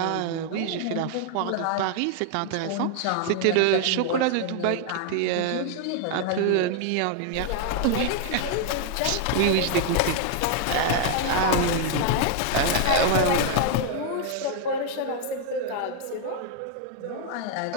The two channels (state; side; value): different; both; correlation 0.00